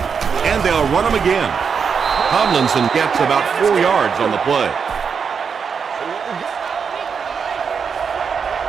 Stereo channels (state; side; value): quieter; left; 6.2 dB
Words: And they'll run him again. Tomlinson gets about 4 yards on the play.